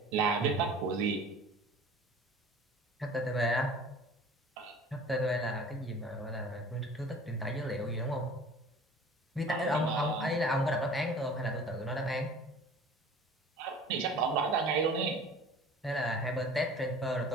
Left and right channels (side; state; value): both; normal; correlation 0.44